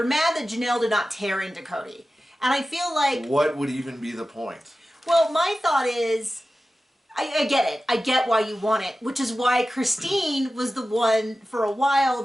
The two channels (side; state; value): both; normal; correlation 0.94